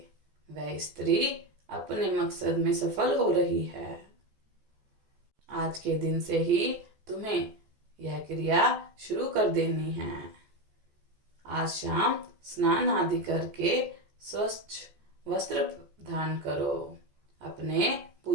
वह स्त्री अपने मकसद में सफल हो रही है। आज के दिन से ही तुम्हें यह क्रिया शुरू कर देनी है। आज शाम स्नान आदि करके स्वच्छ वस्त्र धारण करो। अपने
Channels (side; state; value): left; late; 14 ms